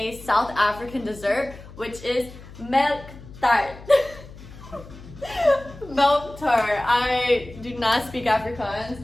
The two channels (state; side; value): noise; left; hum, 17 dB below the sound